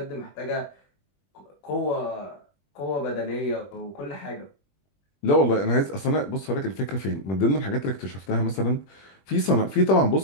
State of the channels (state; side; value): late; right; 21 ms